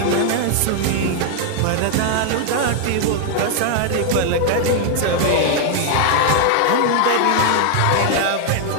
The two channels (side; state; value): both; different; correlation 0.00